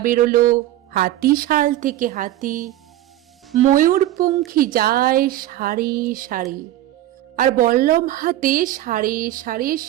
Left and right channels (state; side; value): quieter; left; 14.2 dB